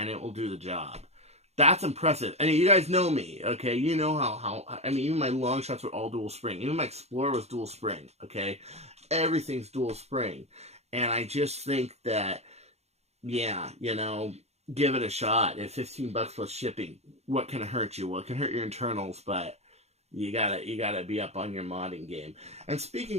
it will do the job. That's impressive. I mean, you guys know me, okay? You know how I mean, even my long shots were all dual spring. Even my Explorer was dual spring, okay? Everything's dual spring. And I just think that, yeah, you know, give it a shot. At $15 plus shipping, what can hurt you? Well, it can hurt your internals, but you gotta be up on your modding game. And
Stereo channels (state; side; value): late; left; 0.31 ms